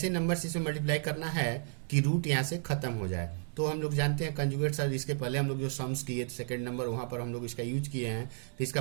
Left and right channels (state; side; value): silent; left; digital silence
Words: नंबर से इसे मल्टीप्लाई करना है कि रूट यहाँ से खत्म हो जाए। तो हम लोग जानते हैं कंजुगेट सर, इसके पहले हम लोग जो सम्स किए सेकंड नंबर, वहाँ पर हम लोग इसका यूज किए हैं। तो इसका